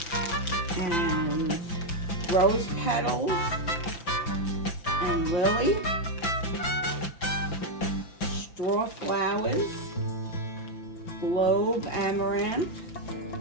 Rose petals and lily, straw flowers, globe amaranth,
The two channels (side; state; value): right; late; 5.9 ms